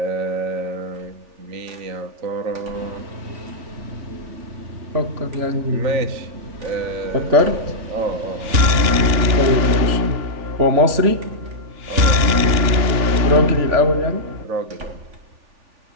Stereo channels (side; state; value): left; late; 3.4 ms